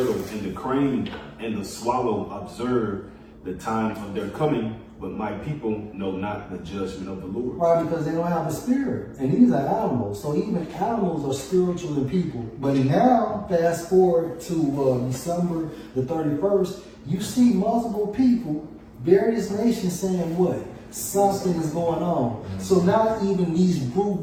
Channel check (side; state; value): both; identical; correlation 1.00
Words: and the crane and the swallow observe the time of their coming, but my people know not the judgment of the Lord. Right, because they don't have a spirit. And these are animals. So even animals are spiritual than people. But now, fast forward to December the 31st, you see multiple people, various nations saying what? Something is going on. So now even these